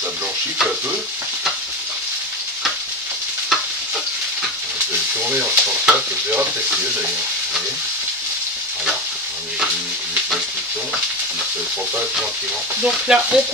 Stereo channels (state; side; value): normal; both; correlation 0.21